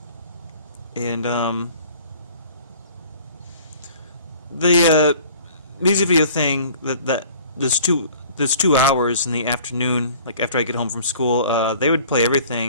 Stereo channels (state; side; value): inverted; both; correlation -0.49